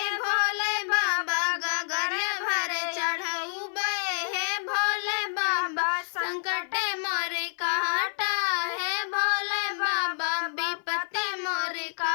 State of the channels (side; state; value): right; silent; 57 dB below the other